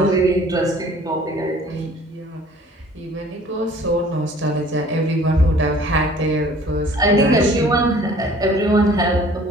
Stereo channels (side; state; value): both; normal; correlation 0.52